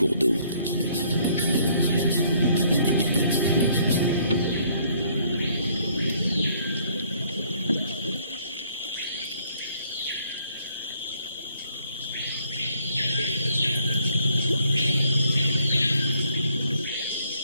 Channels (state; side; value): inverted; both; correlation -0.64